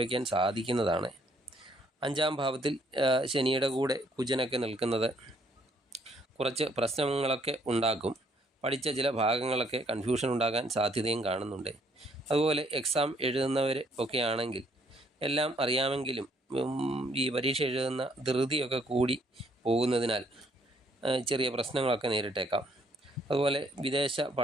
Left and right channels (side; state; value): both; normal; correlation 0.66